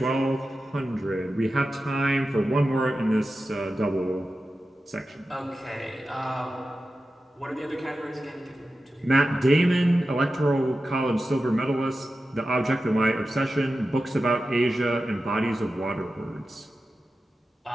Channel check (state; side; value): normal; both; correlation 0.93